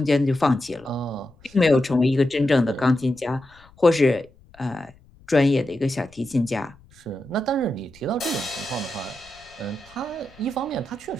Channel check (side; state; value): left; noise; rumble, 27 dB below the sound